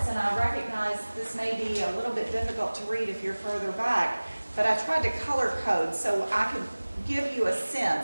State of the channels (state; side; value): inverted; both; correlation -1.00